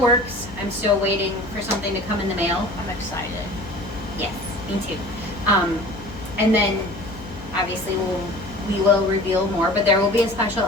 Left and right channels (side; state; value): left; noise; hum, 15 dB below the sound